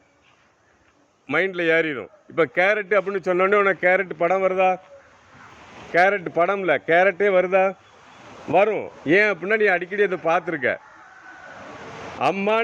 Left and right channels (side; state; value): both; identical; correlation 1.00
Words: மைண்டில் ஏறிடும். இப்போ கேரட்டு அப்படின்னு சொன்னோடனே உனக்கு கேரட் படம் வருதா? கேரட் படம் இல்லை, கேரட்டே வருதா? வரும். ஏன் அப்படின்னா நீ அடிக்கடி அதை பார்த்துருக்க.